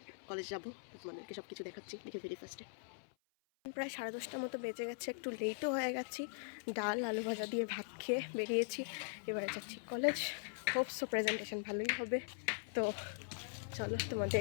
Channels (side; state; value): right; silent; 50 dB below the other